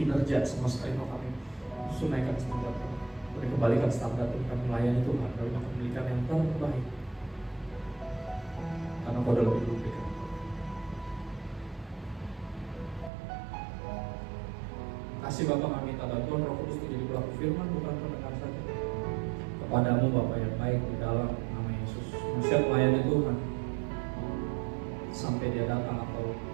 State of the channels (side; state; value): left; drops out; at 13.1 s